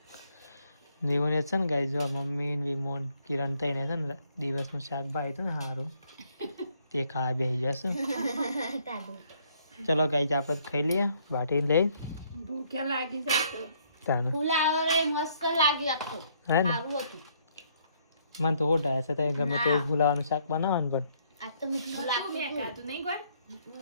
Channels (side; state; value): both; inverted; correlation -0.68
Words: જીવન છે ને ગાઈ જો મમ્મી ને વિમોન કિરણ થઈને છે ને દિવસનું શાક ભાઈ હતું ને સારું તે ખાવા બેસી જશું તાદુ ચલો ગાઈ આપણે ખાઈ લઈએ બાટી લઈ ભૂખ્યા લાગી જશે. તાને ફુલાવરે મસ્ત લાગ્યું આખું હે ને સારું હતું મને તો ઓઢાય છે તો ગમે તે ભૂલાવાનું શાક બનાવવાનું પણ આ તો મીઠું લાગ્યું મેં ખાધું નહીં કોઈ